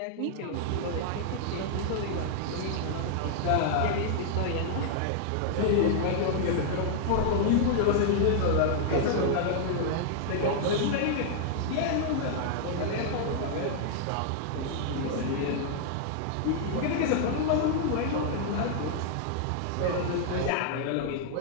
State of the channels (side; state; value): both; different; correlation -0.01